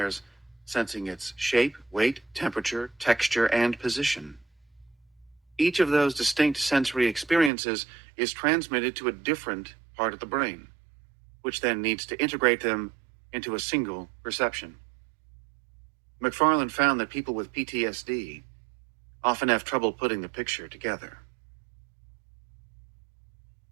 sensing its shape, weight, temperature, texture, and position. Each of those distinct sensory experiences is transmitted to a different part of the brain, which then needs to integrate them into a single perception. McFarlane found that people with PTSD often have trouble putting the picture together.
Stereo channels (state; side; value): drops out; left; at 7.5 s